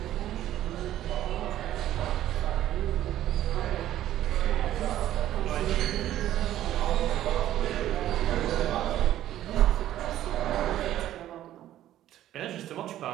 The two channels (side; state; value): left; quieter; 12.9 dB